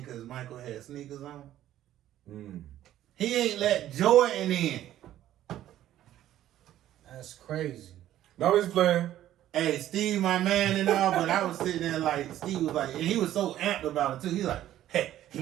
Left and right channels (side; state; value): left; quieter; 12.7 dB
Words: because Michael had sneakers on? He ain't let Jordan in. That's crazy. No, he's playing. Hey, Steve, my man and all, but I was sitting there like, Steve was like, and he was so amped about it too. He's like, hey,